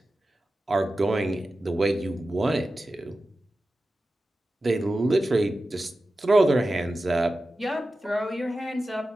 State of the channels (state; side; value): normal; both; correlation 0.93